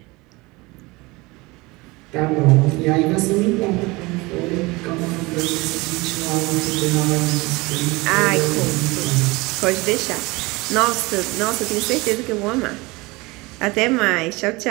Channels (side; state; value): left; quieter; 23.3 dB